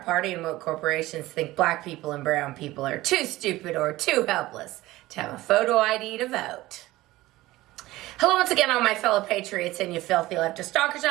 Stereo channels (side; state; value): left; quieter; 17.7 dB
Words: Party and woke corporations think black people and brown people are too stupid or too helpless to have a photo ID to vote. Hello once again, all my fellow patriots and you filthy leftist stalkers